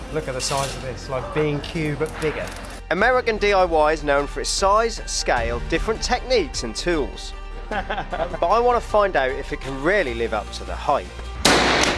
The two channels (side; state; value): both; identical; correlation 1.00